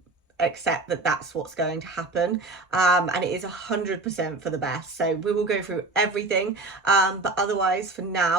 accept that that's what's going to happen, and it is 100% for the best. So we will go through everything, but otherwise for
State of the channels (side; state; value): left; quieter; 3.3 dB